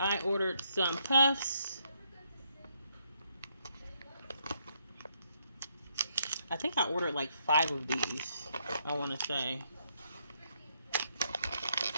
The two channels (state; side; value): inverted; both; correlation -0.74